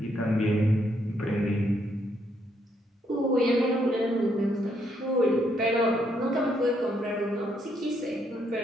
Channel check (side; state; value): both; normal; correlation 0.74